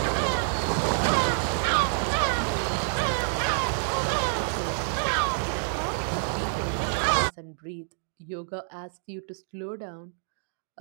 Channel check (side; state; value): left; silent; digital silence